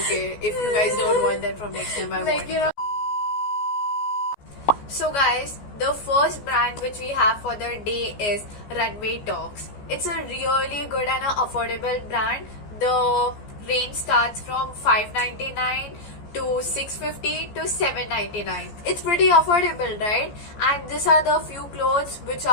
if you guys don't want, then from next time I won't. So guys, the first brand which we have for the day is Runway Talks. It's a really good and a affordable brand. The range starts from 599 to 650 to 799. It's pretty affordable, right? And these are the few clothes which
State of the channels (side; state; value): right; late; 14 ms